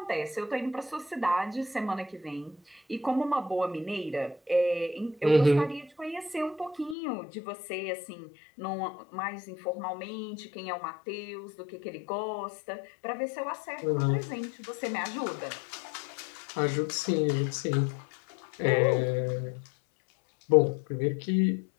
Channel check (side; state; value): right; drops out; at 7.0 s